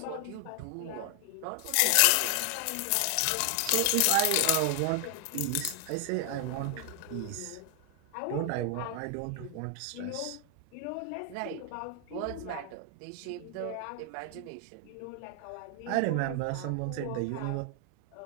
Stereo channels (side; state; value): both; different; correlation 0.00